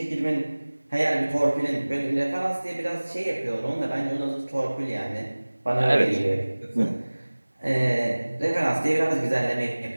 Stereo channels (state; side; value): inverted; both; correlation -1.00